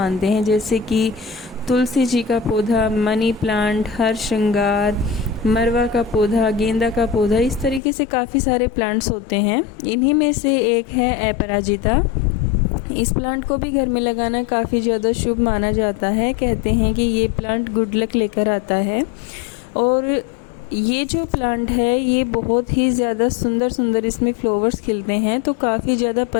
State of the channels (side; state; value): right; drops out; at 7.8 s